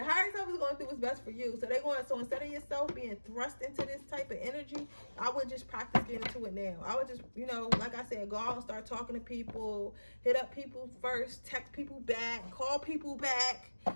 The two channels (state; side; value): inverted; both; correlation -1.00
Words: higher self is going to do what's best for you. So instead of yourself being thrust into this type of energy, I would just practice getting into it now. I would just, like I said, go out and start talking to people, hit up people first, text people back, call people back.